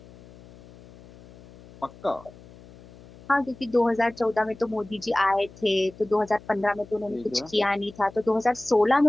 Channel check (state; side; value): noise; left; hum, 21 dB below the sound